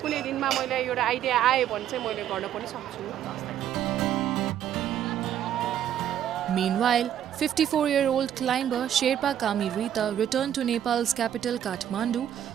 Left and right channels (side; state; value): left; quieter; 10.5 dB